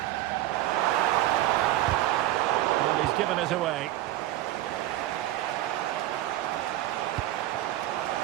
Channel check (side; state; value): left; quieter; 15.0 dB